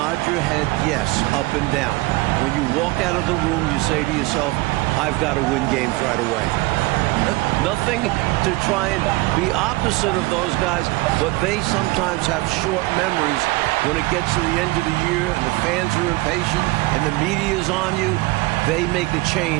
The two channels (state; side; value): quieter; left; 21.6 dB